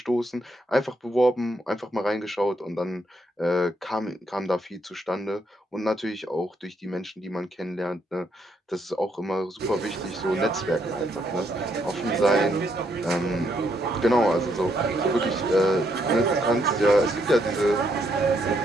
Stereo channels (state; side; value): normal; both; correlation 0.74